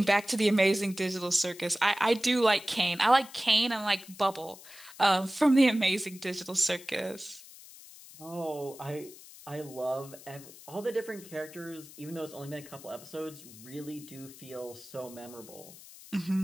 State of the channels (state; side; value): noise; left; hiss, 18 dB below the sound